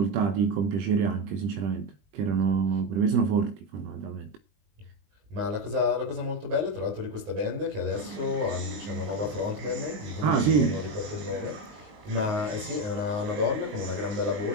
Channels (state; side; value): late; left; 20 ms